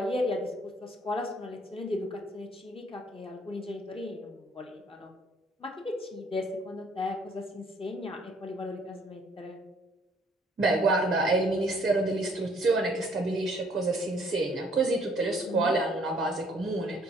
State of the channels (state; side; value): normal; both; correlation 0.62